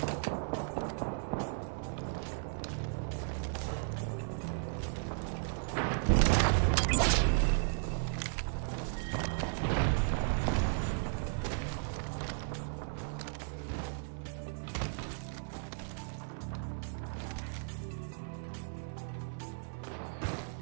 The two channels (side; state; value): left; silent; 54 dB below the other